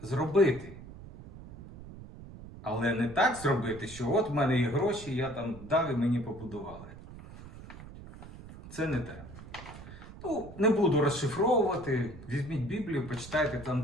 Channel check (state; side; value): noise; right; rumble, 15 dB below the sound